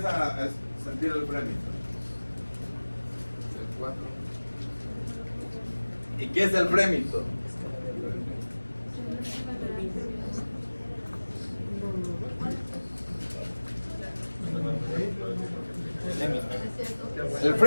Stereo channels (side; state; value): both; inverted; correlation -1.00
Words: a sentir el frémito? El 4. ¿Y qué es el frémito? El